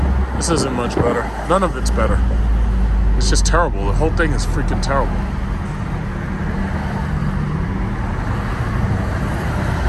This isn't much better. None of it's better. It's just terrible. The whole thing is freaking terrible.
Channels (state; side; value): identical; both; correlation 1.00